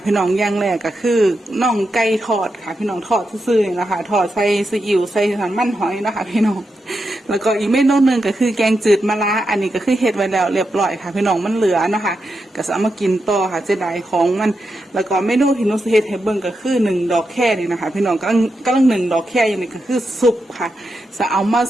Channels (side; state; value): both; normal; correlation 0.86